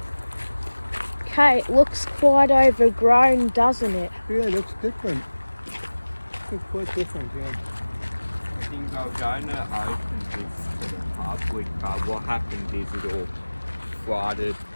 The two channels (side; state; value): both; inverted; correlation -1.00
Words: Okay, it looks quite overgrown, doesn't it? Yeah, it looks different. It's quite different, yeah. I think they were going to open this to the public, but what happened is it all flooded,